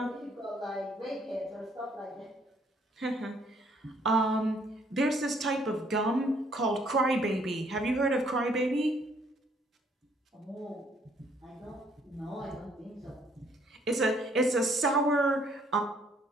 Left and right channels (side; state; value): both; normal; correlation 0.65